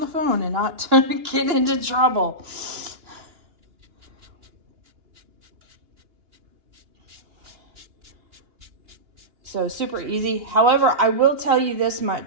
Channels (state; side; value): late; left; 2.9 ms